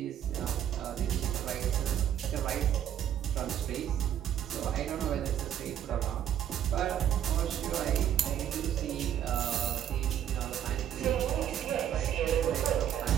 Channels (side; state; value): left; quieter; 10.2 dB